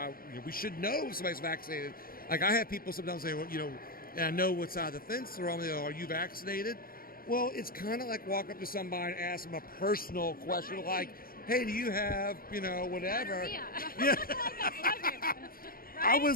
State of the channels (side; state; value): right; late; 0.42 ms